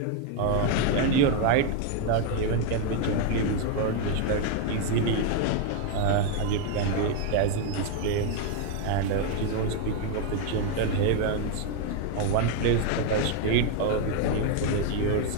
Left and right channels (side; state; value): both; different; correlation 0.01